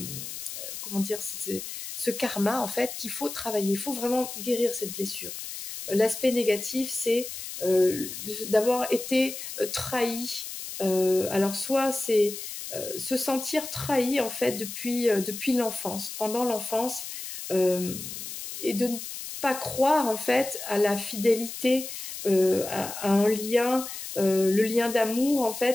dire, ce karma en fait qu'il faut travailler, il faut vraiment guérir cette blessure. L'aspect négatif, c'est d'avoir été trahi. Alors soit c'est se sentir trahi en fait depuis l'enfance, pendant l'enfance, et de ne pas croire en fait à la fidélité, à un lien, le lien d'amour en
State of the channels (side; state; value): left; noise; hiss, 8 dB below the sound